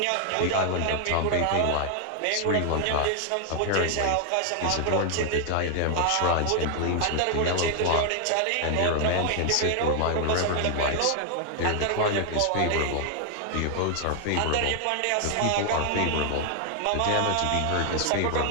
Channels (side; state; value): both; different; correlation 0.00